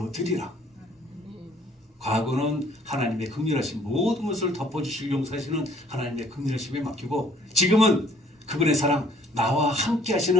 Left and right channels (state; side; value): normal; both; correlation 0.59